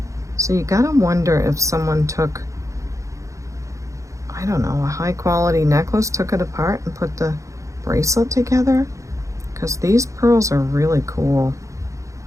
So you gotta wonder if someone took, I don't know, a high quality necklace, took it apart and put the bracelet together, because these pearls are really cool.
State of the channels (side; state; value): left; late; 0.15 ms